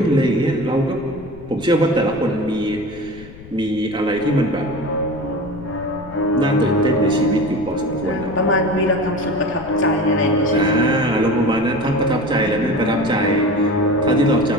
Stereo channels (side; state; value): left; noise; rumble, 18 dB below the sound